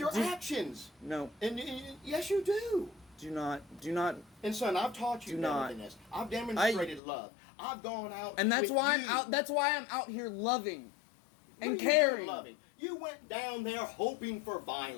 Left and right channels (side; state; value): right; drops out; at 7.0 s